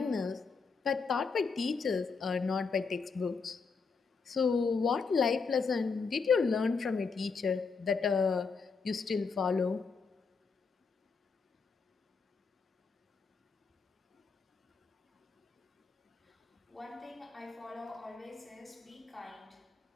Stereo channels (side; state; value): right; quieter; 5.0 dB